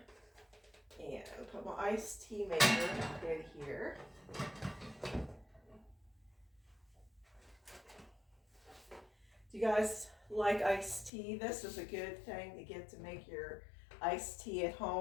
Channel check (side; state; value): right; drops out; at 11.1 s